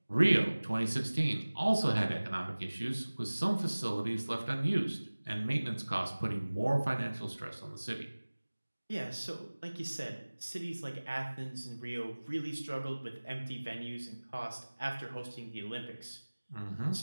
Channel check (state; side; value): inverted; both; correlation -1.00